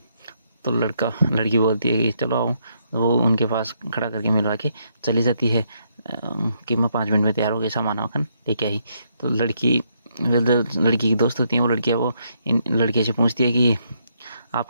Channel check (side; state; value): both; inverted; correlation -0.75